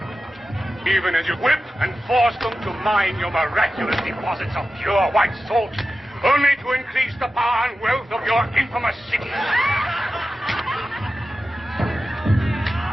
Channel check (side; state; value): both; normal; correlation 0.93